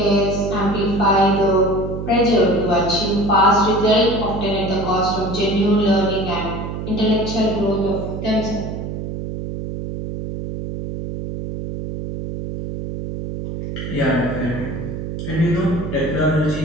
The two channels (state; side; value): noise; right; hum, 6 dB below the sound